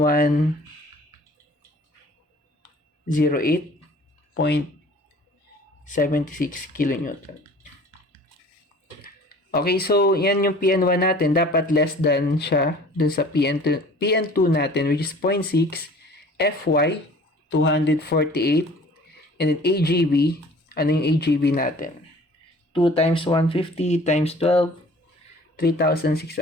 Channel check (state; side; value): normal; both; correlation 0.48